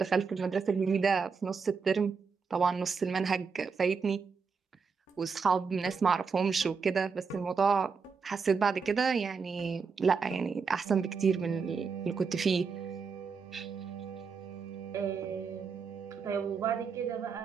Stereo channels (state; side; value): quieter; left; 5.4 dB